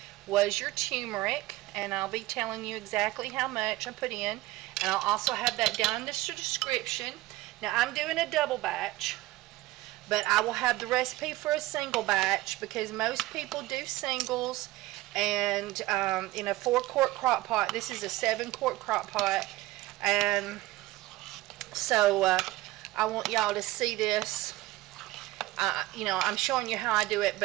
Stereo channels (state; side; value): quieter; left; 17.8 dB